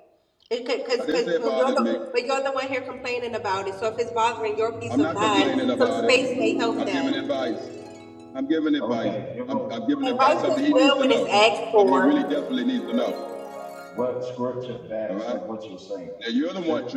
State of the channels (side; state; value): both; identical; correlation 1.00